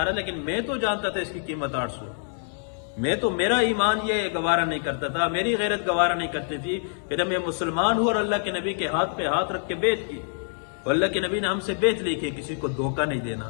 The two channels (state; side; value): silent; right; 61 dB below the other